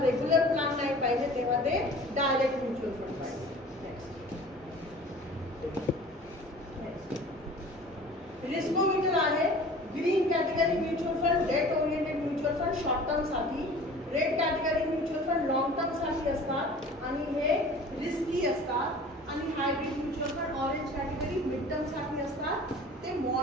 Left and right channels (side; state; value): both; normal; correlation 0.44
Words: रेग्युलर प्लॅन नाही पाहिजे, तेव्हा ते डायरेक्ट म्युच्युअल फंड पाहिजे. रिस्कोमीटर आहे. Green category mutual fund, debt oriented mutual fund short term साठी, red category mutual fund long term साठी असतात आणि हे रिस्की असतात, आणि hybrid mutual fund orange category mid term साठी असतात, ते